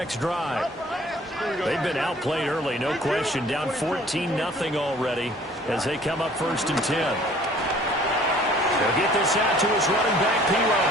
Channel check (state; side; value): normal; both; correlation 0.54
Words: drive. They've been outplayed early, no question. Down 14-0 already as they come up first and 10. They'll get this out to his running back,